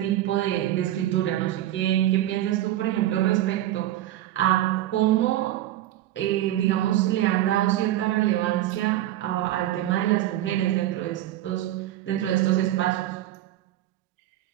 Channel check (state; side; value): quieter; left; 13.8 dB